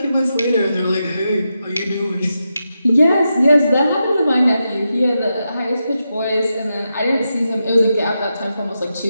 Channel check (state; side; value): inverted; both; correlation -0.87